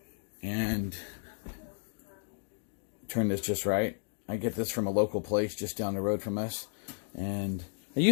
And turn this just right. I get this from a local place just down the road from us, and I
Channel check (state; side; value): silent; right; 56 dB below the other